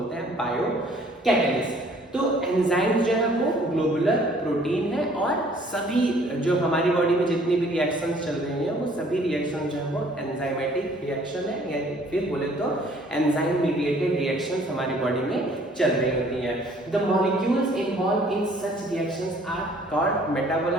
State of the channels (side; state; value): both; normal; correlation 0.57